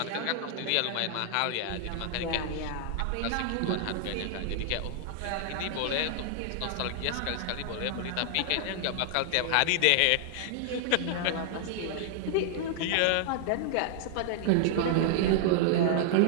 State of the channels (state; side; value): different; both; correlation -0.01